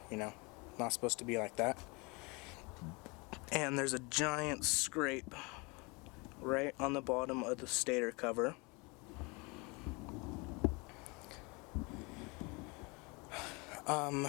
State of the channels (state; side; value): quieter; right; 28.3 dB